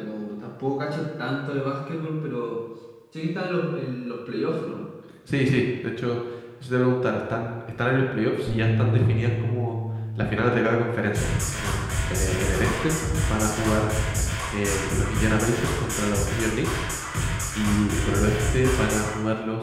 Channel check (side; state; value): both; identical; correlation 1.00